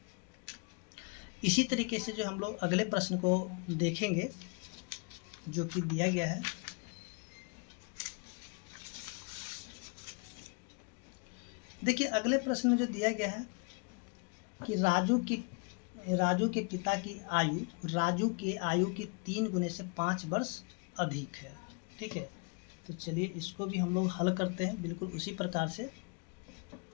इसी तरीके से जो हम लोग अगले प्रश्न को देखेंगे जो कि दिया गया है, देखिए अगले प्रश्न में जो दिया गया है कि राजू के पिता की आयु राजू के आयु की 3 गुने से 5 वर्ष अधिक है, ठीक है। तो चलिए इसको भी हम लोग हल करते हैं बिल्कुल उसी प्रकार से।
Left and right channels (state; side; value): quieter; right; 34.3 dB